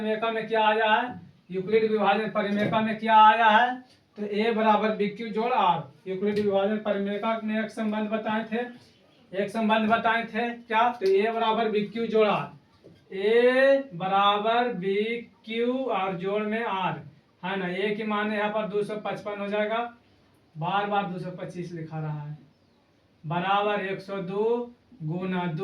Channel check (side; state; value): both; identical; correlation 1.00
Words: में क्या आया है, यूक्लिड विभाजन परिमेयिका में क्या आया है, तो ए बराबर बी क्यू जोड़ आर। यूक्लिड विभाजन परिमेयिका में एक संबंध बताए थे, क्या, तो ए बराबर बी क्यू जोड़ आर, ए बराबर बी क्यू और जोड़ में आर, है ना। ए की मान यहाँ पर 255 हो जाएगा, बार बार 225 लिखा रहा है, बराबर 102 गुना